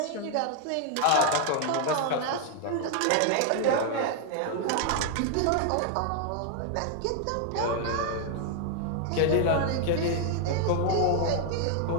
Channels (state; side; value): different; both; correlation 0.00